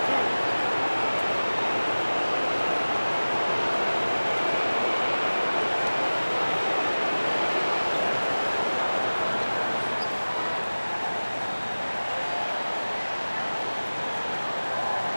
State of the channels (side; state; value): both; inverted; correlation -1.00